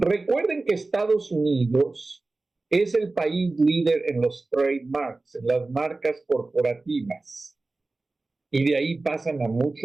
que Estados Unidos es el país líder en los trademarks, en las marcas corporativas. Y de ahí pasan a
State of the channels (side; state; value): left; quieter; 3.3 dB